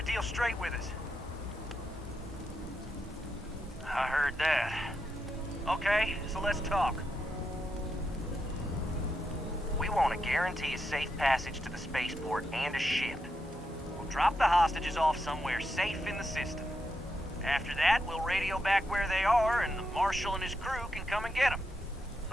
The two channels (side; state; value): both; normal; correlation 0.84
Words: deal straight with us? I heard that. Okay, so let's talk. We want to guarantee a safe passage to the spaceport and a ship. We'll drop the hostages off somewhere safe in the system. After that, we'll radio back where they are, and the Marshal and his crew can come and get them.